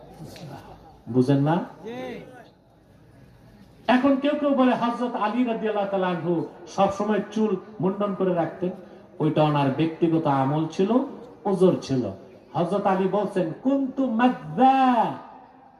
মুস্তাহাব। বুঝেন না? এখন কেউ কেউ বলে হযরত আলী রাদিয়াল্লাহু তাআলা আনহু সব সময় চুল মুন্ডন করে রাখতেন, ওইটা ওনার ব্যক্তিগত আমল ছিল, ওজর ছিল। হযরত আলী বলছেন, কুনতু মাযযা,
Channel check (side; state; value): both; identical; correlation 1.00